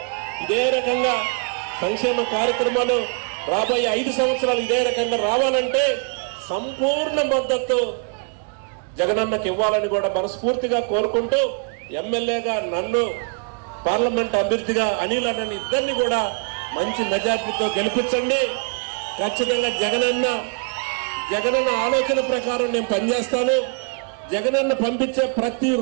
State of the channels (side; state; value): left; quieter; 38.1 dB